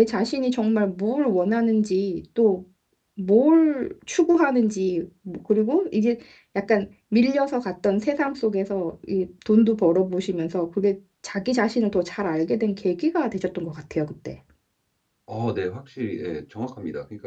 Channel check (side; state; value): both; identical; correlation 1.00